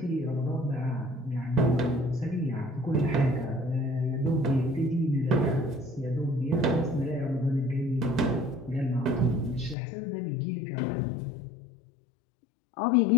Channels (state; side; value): drops out; right; at 9.8 s